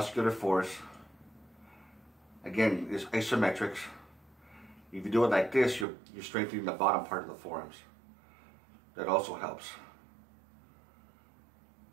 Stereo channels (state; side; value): drops out; left; at 5.9 s